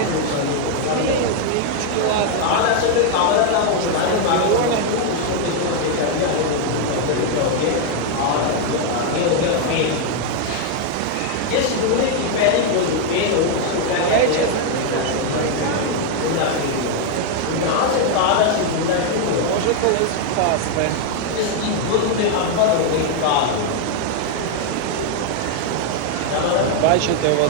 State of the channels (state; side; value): different; both; correlation 0.00